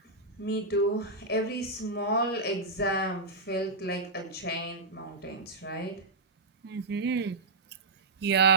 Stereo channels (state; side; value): quieter; left; 3.0 dB